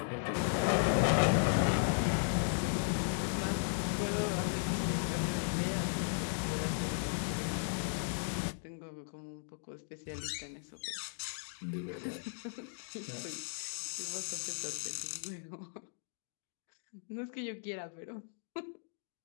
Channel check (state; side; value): silent; right; digital silence